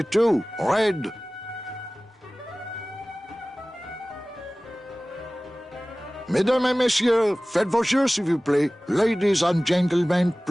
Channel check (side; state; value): both; normal; correlation 0.98